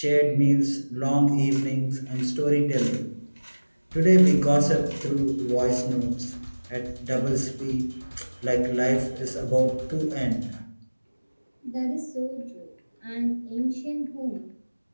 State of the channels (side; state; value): both; inverted; correlation -1.00